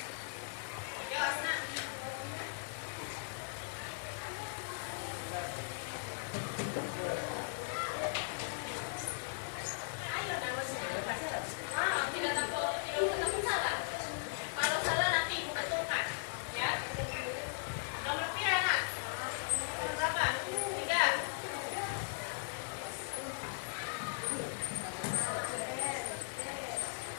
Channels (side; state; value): right; silent; digital silence